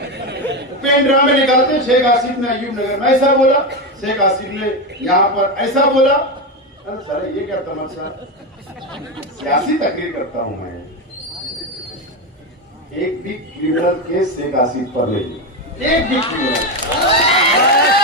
पेन ड्राइव में निकालते, शेख आसिफ ने अयूब नगर में ऐसा बोला, शेख आसिफ ने यहाँ पर ऐसा बोला। अरे सर ये क्या तमाशा, सियासी तकरीर करता हूं मैं। एक भी क्रिमिनल केस शेख आसिफ पर नहीं, एक भी क्रिमिनल।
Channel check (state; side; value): normal; both; correlation 0.13